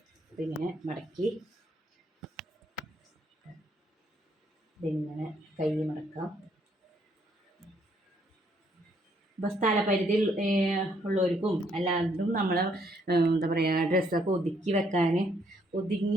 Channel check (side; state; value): both; normal; correlation 0.70